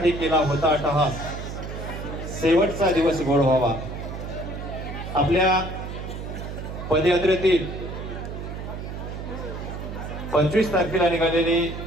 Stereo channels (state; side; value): noise; right; hum, 8 dB below the sound